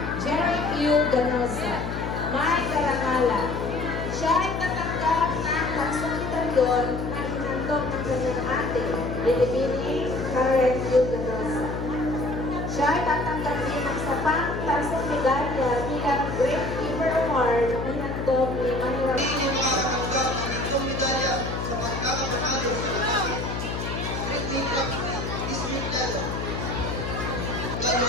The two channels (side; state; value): left; noise; hum, 4 dB below the sound